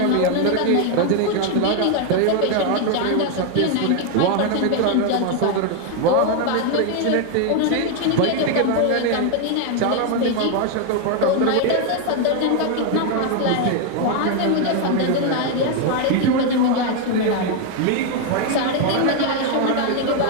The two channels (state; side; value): different; both; correlation 0.01